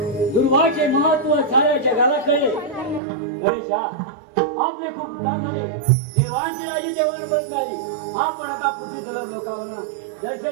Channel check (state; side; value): drops out; left; at 3.0 s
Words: दुर्वाचे महत्व साऱ्या जगाला कळले. गणेशा, आपले खूप उपकार झाले. देवांची राजी देवांना परत मिळाली. आपण आता पृथ्वी तलाव लोकांना